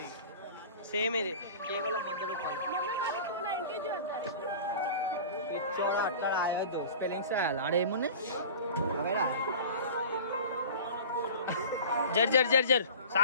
సేమ్ ఇది కేవలం స్పెల్లింగ్స్ ఆడేమున్నాయి జర్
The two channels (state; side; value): inverted; both; correlation -0.39